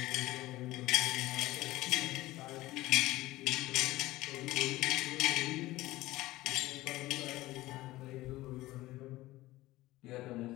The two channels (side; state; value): right; quieter; 17.7 dB